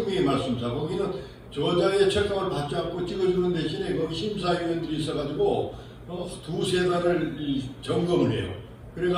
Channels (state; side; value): identical; both; correlation 1.00